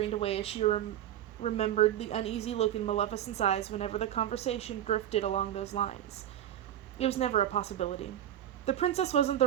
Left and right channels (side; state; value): left; quieter; 11.5 dB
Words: away as she remembered the uneasy look in Maleficent's eyes whenever the conversation drifted along those lines. It was never a possibility. The princess wasn't